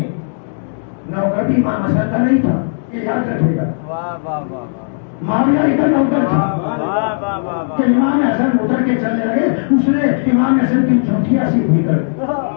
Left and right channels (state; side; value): silent; right; digital silence